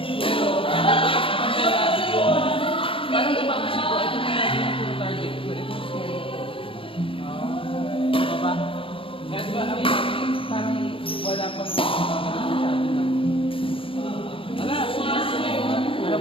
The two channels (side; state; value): right; late; 0.26 ms